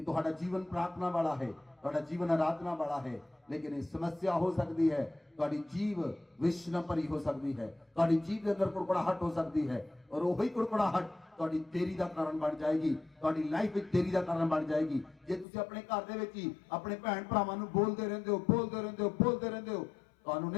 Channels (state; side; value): drops out; right; at 15.5 s